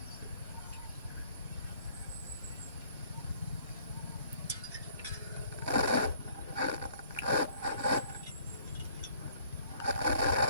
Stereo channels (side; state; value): both; inverted; correlation -0.59